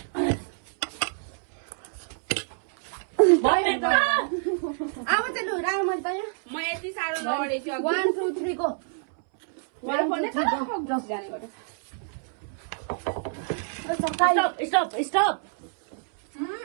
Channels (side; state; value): left; silent; 60 dB below the other